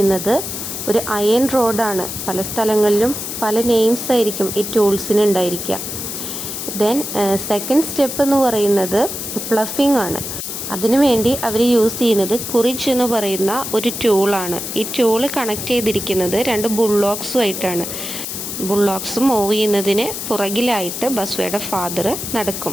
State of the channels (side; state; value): left; noise; hiss, 6 dB below the sound